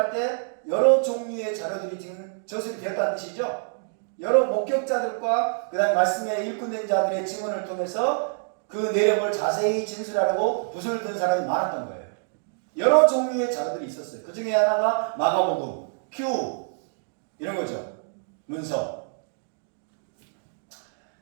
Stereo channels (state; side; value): silent; left; digital silence